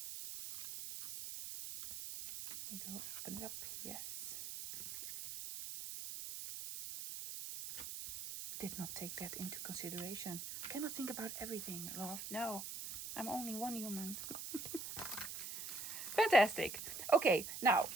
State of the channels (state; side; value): noise; right; hiss, 7 dB below the sound